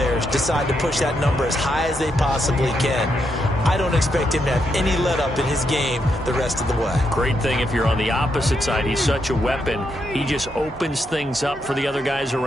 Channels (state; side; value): normal; both; correlation 0.80